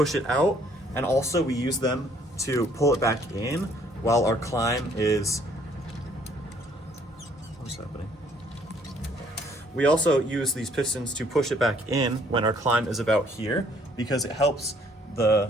it out, and also we use them to pull it back in while our climb is... What's happening? We also use these pistons to push it back in when our climb is about here, because it helps the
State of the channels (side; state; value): both; normal; correlation 0.63